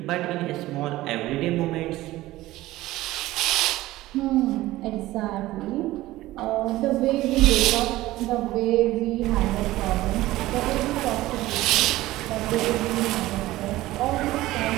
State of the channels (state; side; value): quieter; left; 16.9 dB